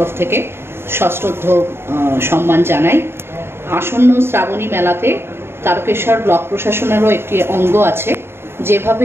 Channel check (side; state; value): left; late; 0.11 ms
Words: থেকে সশ্রদ্ধ সম্মান জানাই। আসন্ন শ্রাবণী মেলাতে তারকেশ্বর ব্লক প্রশাসনেরও একটি অঙ্গ আছে।